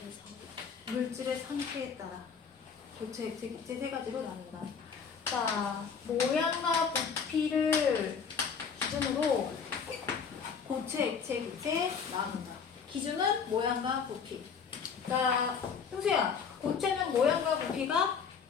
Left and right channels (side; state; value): right; quieter; 6.3 dB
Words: 물질의 상태에 따라 고체, 액체, 기체 세 가지로 나눈다. 자, 모양과 부피를 기준으로 고체, 액체, 기체 나눈다. 기준은 모양과 부피. 자, 형수야, 고체는 모양과 부피가